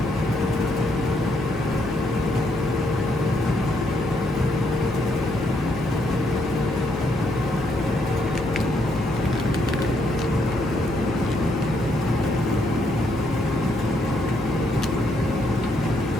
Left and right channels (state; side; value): noise; left; hum, 13 dB below the sound